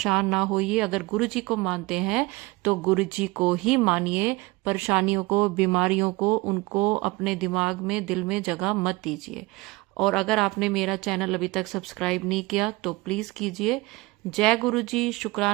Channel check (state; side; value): quieter; left; 22.6 dB